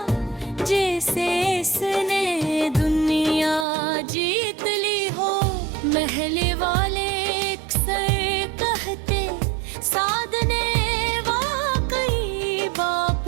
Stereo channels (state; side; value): drops out; left; at 3.7 s